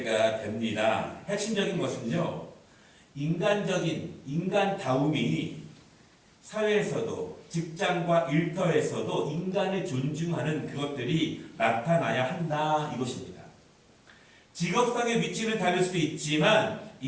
됩니다. 핵심적인 것은요, 인간다움이 사회에서도, 직장과 일터에서도 인간을 존중하는 그것들이 나타나야 한다, 이것입니다. 직업상의 위치는 다를 수 있지만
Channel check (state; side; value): identical; both; correlation 1.00